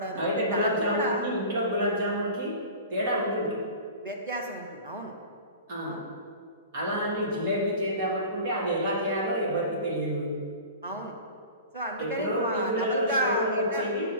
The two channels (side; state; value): both; inverted; correlation -0.37